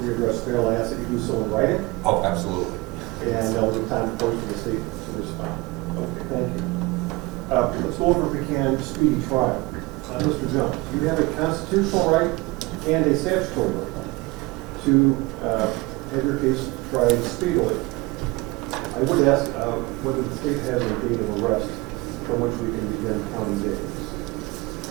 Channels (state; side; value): quieter; left; 23.6 dB